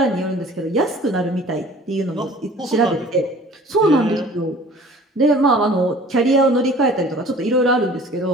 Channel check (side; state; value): both; normal; correlation 0.48